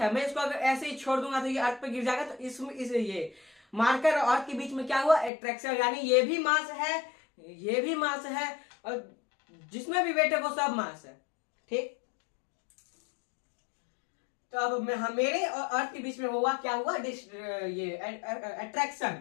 मैं इसको अगर ऐसे ही छोड़ दूंगा तो ये अर्थ पे गिर जाएगा। तो ये मार्कर और अर्थ के बीच में क्या हुआ? अट्रैक्शन। यानी ये भी मास है, ये भी मास है, और जिसमें भी वेट है वो सब मास है, ठीक। तो अब मेरे और अर्थ के बीच में हुआ क्या हुआ? ये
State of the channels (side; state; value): right; drops out; at 5.3 s